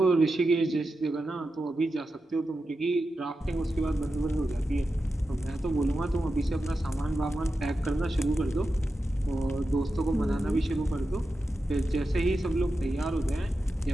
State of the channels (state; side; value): normal; both; correlation 0.90